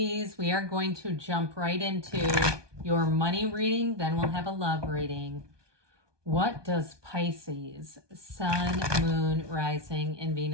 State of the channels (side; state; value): left; late; 1.2 ms